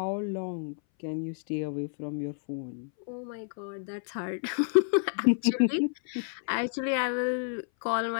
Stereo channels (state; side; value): silent; right; 58 dB below the other